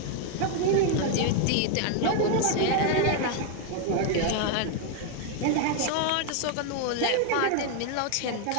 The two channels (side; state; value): both; different; correlation 0.01